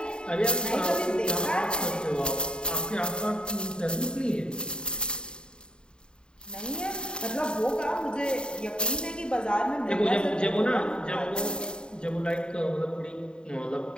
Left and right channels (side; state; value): right; late; 0.049 ms